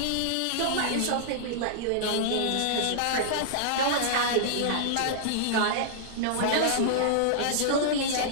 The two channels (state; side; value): different; both; correlation -0.02